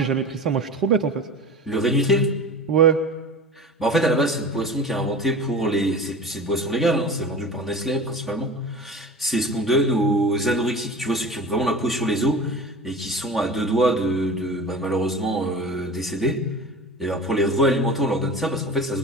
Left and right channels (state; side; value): normal; both; correlation 0.35